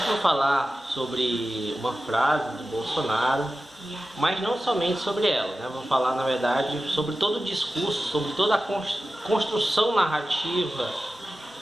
vou falar sobre uma frase do Bolsonaro, mas não somente sobre ela, né? Vou falar, na verdade, sobre todo o discurso, sobre toda a construção narrativa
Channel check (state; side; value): normal; both; correlation 0.94